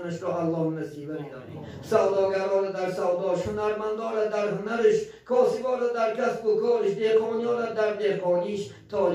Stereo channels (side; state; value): both; identical; correlation 1.00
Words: را الله نصیب بدارید. سوداگران در سوداش، هنرمندان در هنرش، کاسبان در کسب و کارش، دهقانیان در دهقانیش،